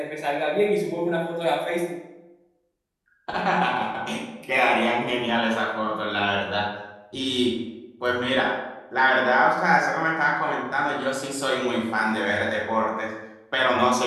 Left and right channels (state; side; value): identical; both; correlation 1.00